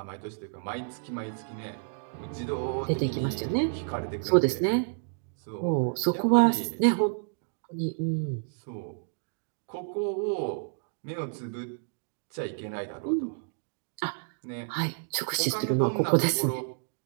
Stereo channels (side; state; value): left; silent; digital silence